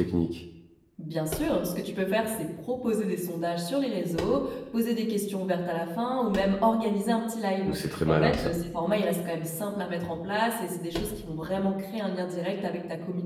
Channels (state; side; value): identical; both; correlation 1.00